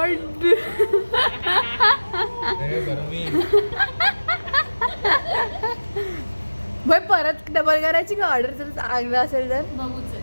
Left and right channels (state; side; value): inverted; both; correlation -1.00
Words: हे गरमी. भाई परत डबल करायची का ऑर्डर जर चांगलं असेल तर. बघूच